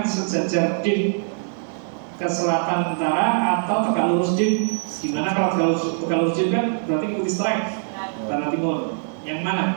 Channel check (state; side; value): silent; left; digital silence